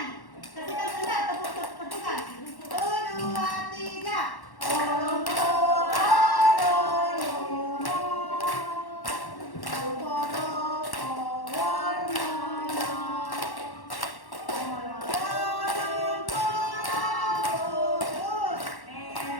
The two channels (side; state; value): right; late; 1.1 ms